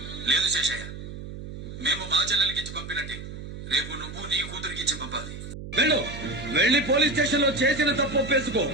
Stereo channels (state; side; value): noise; right; hum, 10 dB below the sound